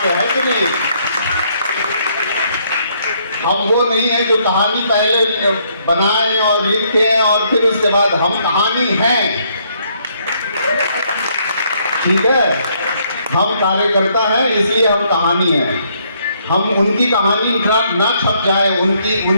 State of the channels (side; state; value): both; inverted; correlation -0.69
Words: कि नहीं? हम वो नहीं है जो कहानी पहले बनाए और लिखे और फिर उसके बाद हम कहानी हैं, ठीक है? हम कार्यकर्ता हैं, इसलिए हम कहानी हैं। हम उनकी कहानी ना छप जाए,